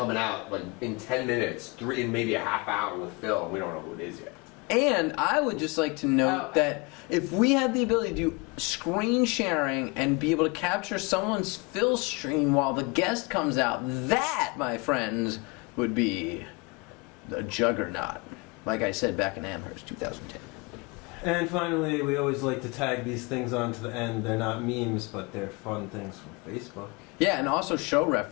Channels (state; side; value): quieter; right; 28.1 dB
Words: out like in 10 minutes, in maybe a half hour with Phil. We don't know who it is yet. And I would just like to note that if we had the ability to do screen sharing and be able to capture someone's Phil stream while the guest comes out, that, my friends, would be the juggernaut. Like I said back in Amherst, 2010. And finally, we always like to tag these things onto the end. They're not memes, but they're fun things from Facebook. Yeah, and also show